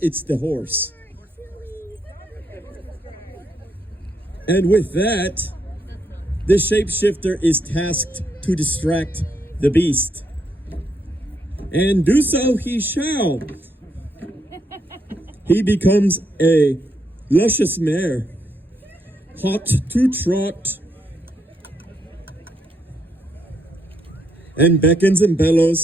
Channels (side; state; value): both; normal; correlation 0.77